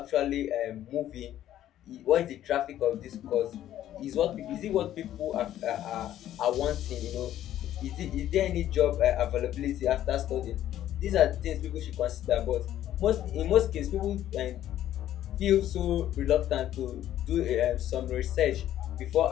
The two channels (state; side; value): quieter; right; 12.2 dB